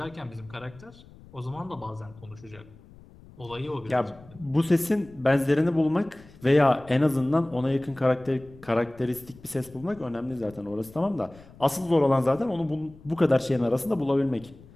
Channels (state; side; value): noise; left; rumble, 22 dB below the sound